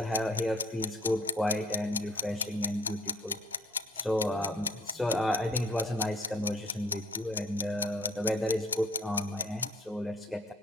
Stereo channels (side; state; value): both; normal; correlation 0.56